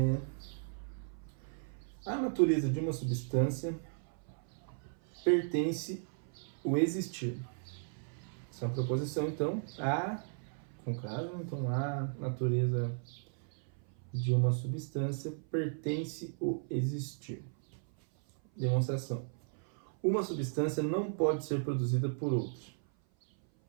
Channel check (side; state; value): left; silent; 54 dB below the other